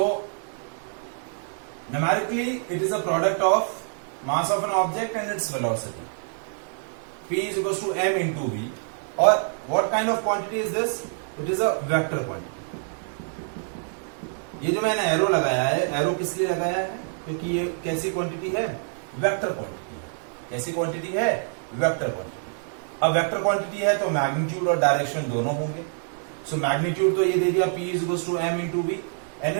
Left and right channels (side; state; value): left; silent; digital silence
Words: numerically it is a product of mass of an object and its velocity. P is equals to m into v, और what kind of quantity is this? It is a vector quantity. ये जो मैंने arrow लगाया है, arrow किस लिए लगाया है? क्योंकि ये कैसी क्वांटिटी है? वेक्टर क्वांटिटी है। कैसी क्वांटिटी है? Vector quantity. अब वेक्टर क्वांटिटी है तो मैग्नीट्यूड और डायरेक्शन दोनों होंगे। सो मैग्नीट्यूड तो ये दे दिया P is equals to m into v, and